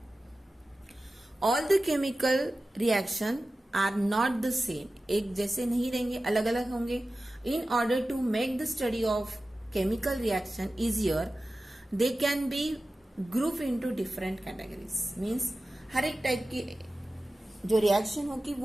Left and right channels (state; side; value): normal; both; correlation 0.95